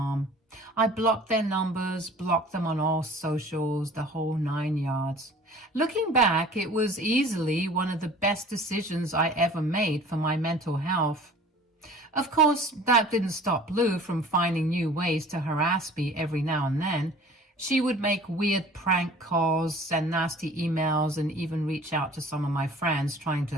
I blocked their numbers, blocked them on all socials, the whole 9 yards. Looking back, it was easily one of the best decisions I ever made for my mental health. Of course, that didn't stop Lou from finding new ways to harass me every now and then. She would make weird prank calls, send nasty emails, and even reach out to some of my friends trying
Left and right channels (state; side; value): normal; both; correlation 0.47